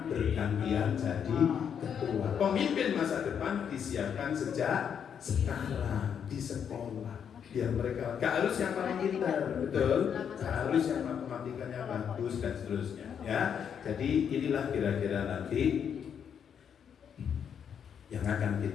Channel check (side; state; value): right; quieter; 7.9 dB